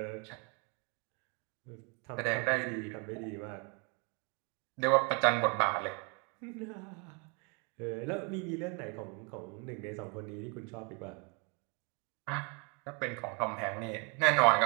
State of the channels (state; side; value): quieter; left; 33.8 dB